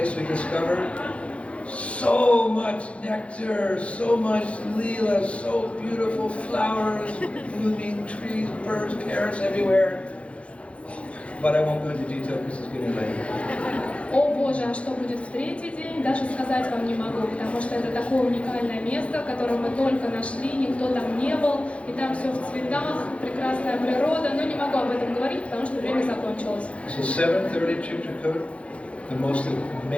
we discovered. So much nectar, so much leela, so beautiful flowers, blooming trees, birds, parrots everywhere. But I won't go into detail because it's getting late. О Боже, а что будет в 3-й день, даже сказать вам не могу, потому что это такое уникальное место, которое мы только нашли, никто там не был, и там все в цветах, прекрасная природа, но не могу об этом говорить, потому что время закончилось. So 7:30 Chitrakoot, the most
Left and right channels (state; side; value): late; right; 0.062 ms